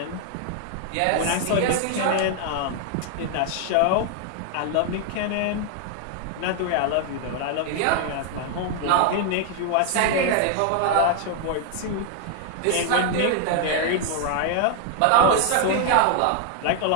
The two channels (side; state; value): both; different; correlation 0.00